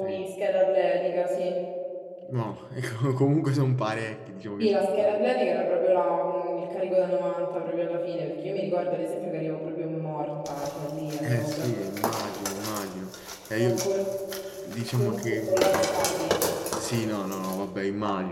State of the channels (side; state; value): both; identical; correlation 1.00